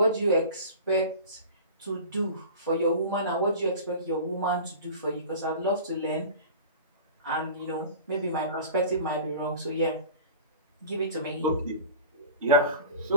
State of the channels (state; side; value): inverted; both; correlation -0.37